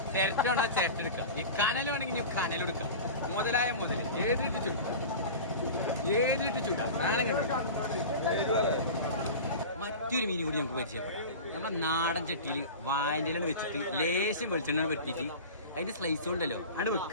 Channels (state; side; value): inverted; both; correlation -0.32